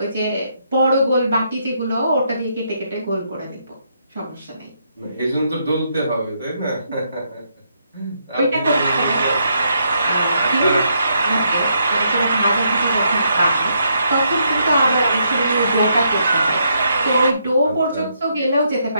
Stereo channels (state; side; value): inverted; both; correlation -0.76